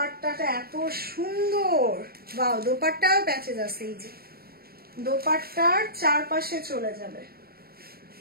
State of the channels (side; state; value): left; late; 0.44 ms